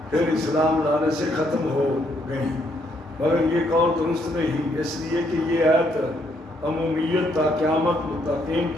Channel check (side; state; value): both; normal; correlation 0.72